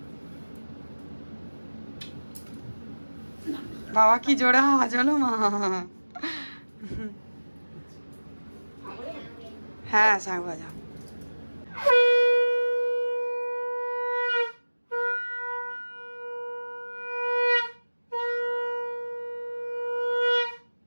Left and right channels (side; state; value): both; inverted; correlation -1.00